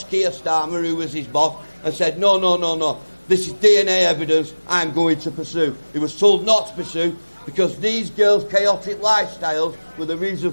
Keir Starmer, who was his boss, and said, no. This is DNA evidence I'm going to pursue. He was told not to pursue because these girls' chaotic lifestyles were the reason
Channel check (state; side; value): inverted; both; correlation -1.00